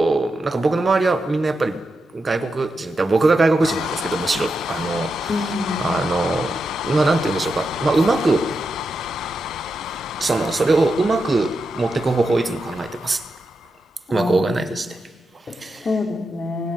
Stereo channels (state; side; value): normal; both; correlation 0.87